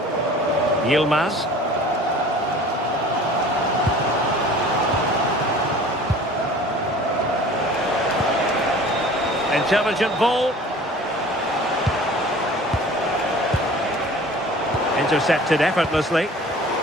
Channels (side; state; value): both; normal; correlation 0.45